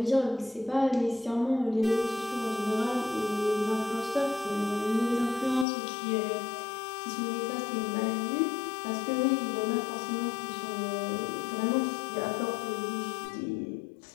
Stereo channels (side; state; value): right; drops out; at 5.7 s